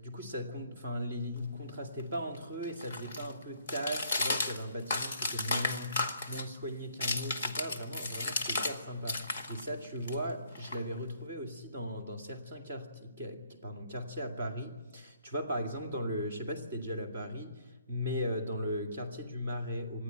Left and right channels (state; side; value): inverted; both; correlation -0.65